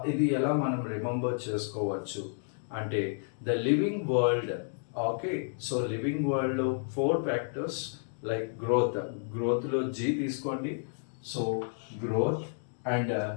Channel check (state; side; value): silent; right; digital silence